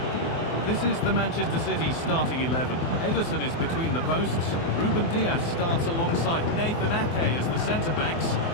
This is the Manchester City starting 11. Ederson is between the posts. Ruben Dias starts alongside Nathan Ake as the centre-backs.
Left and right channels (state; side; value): late; right; 24 ms